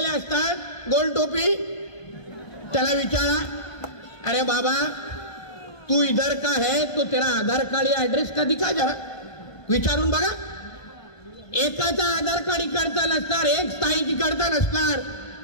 असतात, गोल टोपी, त्याला विचारा, अरे बाबा तू इधर का है तो तेरा आधार कार्ड या एड्रेस का दिखा, जरा विचारून बघा. एकाचा आधार कार्ड इकडचा नसणार, एक स्थायीची इकडचा नसणार.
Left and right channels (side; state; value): right; late; 1.2 ms